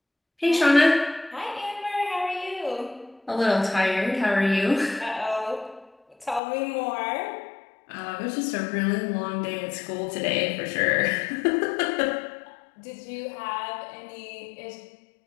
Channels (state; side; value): drops out; right; at 6.4 s